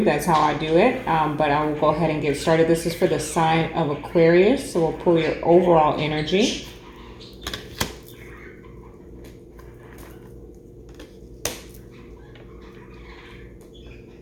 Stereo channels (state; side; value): identical; both; correlation 1.00